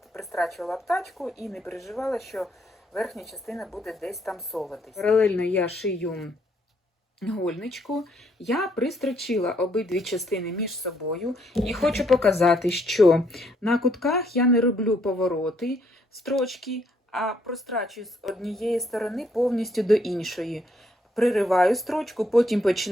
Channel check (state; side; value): normal; both; correlation 0.70